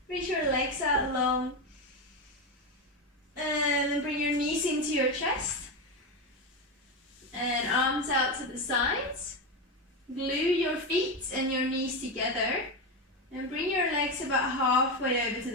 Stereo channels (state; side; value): normal; both; correlation 0.14